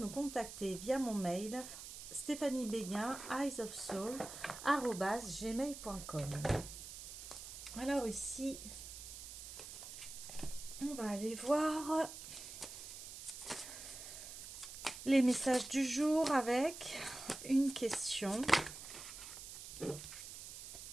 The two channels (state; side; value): noise; right; hiss, 11 dB below the sound